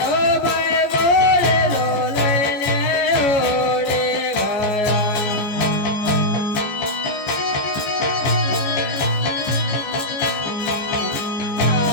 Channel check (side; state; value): right; late; 14 ms